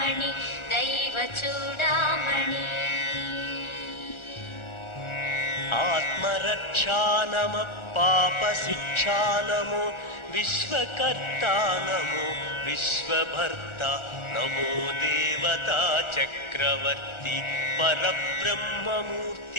दैवचूडामणि आत्मरक्षानम पापशिक्षानमो विश्वकर्ता नमो विश्वभर्ता नमो देवता चक्रवर्ती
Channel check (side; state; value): right; late; 1.4 ms